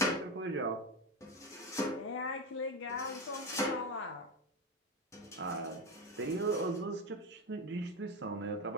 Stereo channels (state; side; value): normal; both; correlation 0.16